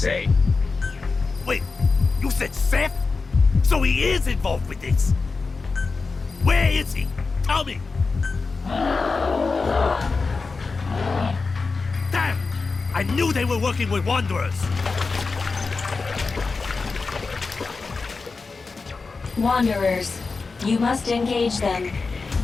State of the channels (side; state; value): right; quieter; 4.2 dB